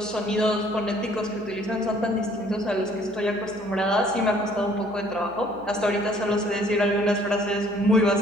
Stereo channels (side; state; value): left; noise; hum, 26 dB below the sound